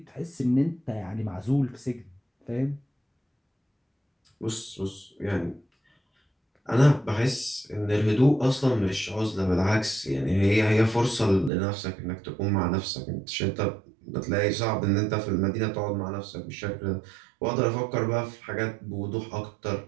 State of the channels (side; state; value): left; drops out; at 11.5 s